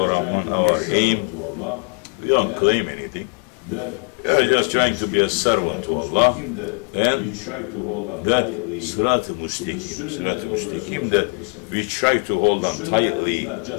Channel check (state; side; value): quieter; right; 39.8 dB